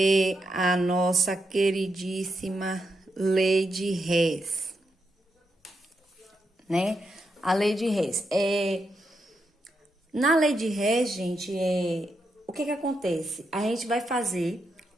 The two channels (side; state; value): both; normal; correlation 0.83